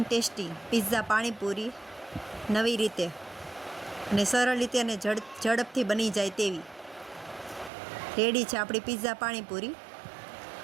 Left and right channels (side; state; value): left; drops out; at 7.7 s